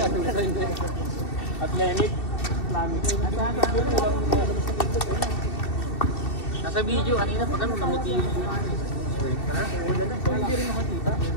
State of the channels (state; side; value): late; right; 2.7 ms